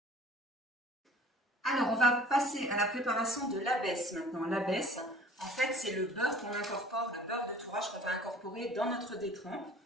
Alors, on va passer à la préparation de l'abaisse maintenant. L'abaisse, en fait, c'est le beurre qu'on incorpore, le beurre de tourage qu'on va incorporer dans notre détrempe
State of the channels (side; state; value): both; normal; correlation 0.48